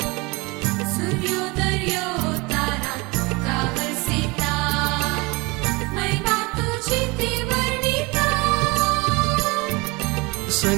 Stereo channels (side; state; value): left; quieter; 25.7 dB